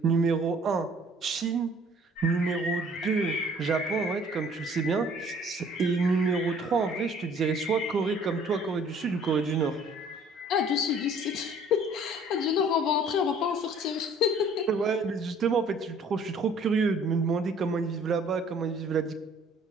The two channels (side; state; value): both; normal; correlation 0.55